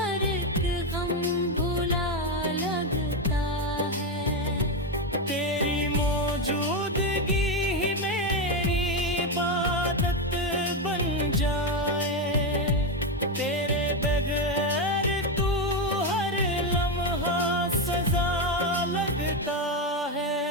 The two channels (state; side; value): normal; both; correlation 0.09